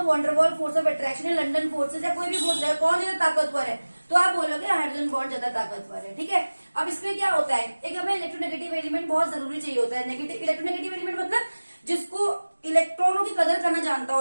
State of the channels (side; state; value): both; inverted; correlation -1.00